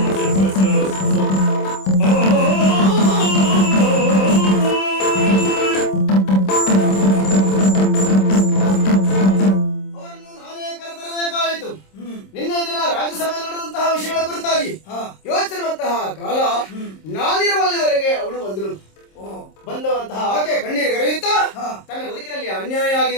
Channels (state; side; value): late; right; 26 ms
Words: ನಿನ್ನೆ ದಿನ ರಾಜ್ಯಸಭೆ ನಡೆದಂತಹ ವಿಷಯಗಳ ಕುರಿತಾಗಿ ಯೋಚಿಸಿರುವಂತಹ ಕಾಲ ನಾನಿರುವಲ್ಲಿವರೆಗೆ ಅವಳು ಬಂದಳು. ಬಂದಂತಹ ಆಕೆ ಕಣ್ಣೀರು ಗರೆಯುತ್ತಾ ತನ್ನ ಬದುಕಿನಲ್ಲಿ ಅನ್ಯಾಯ